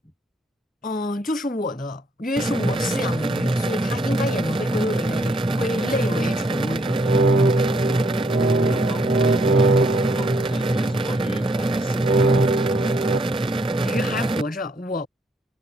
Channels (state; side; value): normal; both; correlation 0.70